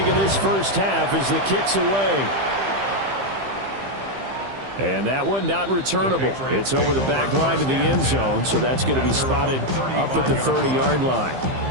in this first half as the kick's away. And that one not returnable. It's over the back line of the end zone, so that's going to be spotted up at the 30-yard line.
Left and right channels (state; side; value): late; left; 15 ms